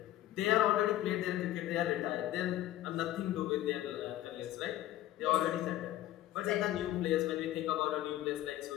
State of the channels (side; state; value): right; quieter; 14.0 dB